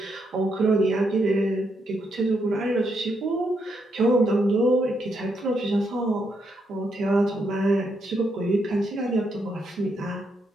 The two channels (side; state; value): both; normal; correlation 0.79